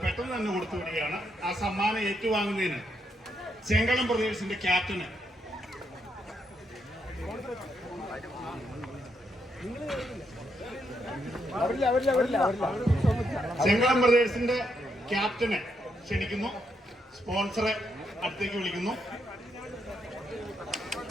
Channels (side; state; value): both; normal; correlation 0.79